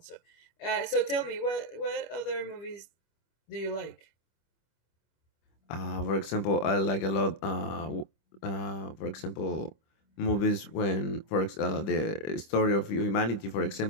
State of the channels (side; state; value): right; late; 25 ms